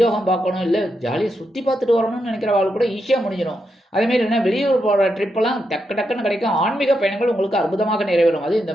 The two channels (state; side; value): normal; both; correlation 0.84